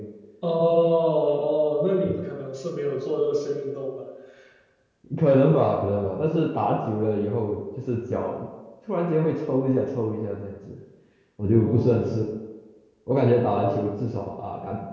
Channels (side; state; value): both; identical; correlation 1.00